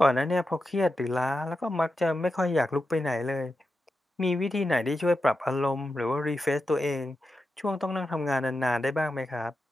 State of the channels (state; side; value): normal; both; correlation 0.89